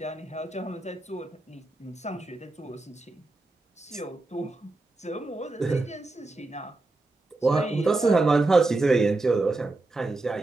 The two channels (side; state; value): left; quieter; 3.1 dB